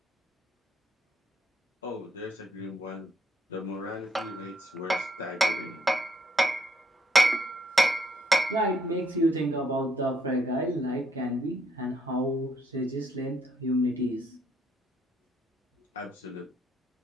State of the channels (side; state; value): both; normal; correlation 0.72